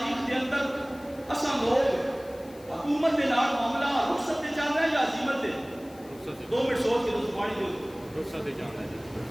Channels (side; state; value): left; noise; hiss, 24 dB below the sound